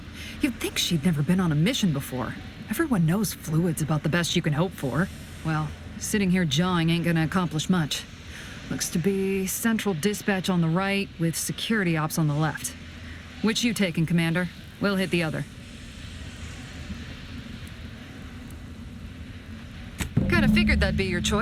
You'd think she'd never been on a mission before. Everyone knows fluid's about the best you can hope for. Well, sitting here jawing ain't gonna accomplish much. Looks to be central dispatch on the right with security ops on the left. Which you taking, Commander? We'll hit the other. Kinda figured that'd be your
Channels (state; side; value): identical; both; correlation 1.00